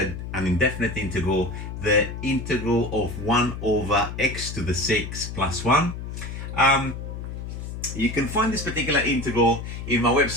indefinite integral, the integral of 1 over x to the 6 plus 1. You can find this particular integral in my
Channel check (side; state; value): left; noise; hum, 8 dB below the sound